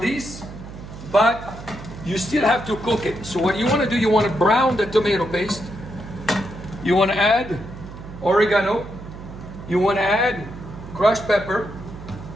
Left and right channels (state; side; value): noise; right; hum, 13 dB below the sound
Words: but you still have to cook it. So what you want to do, you want to brown the tomato paste. You want to add oregano. You want to add crushed pepper.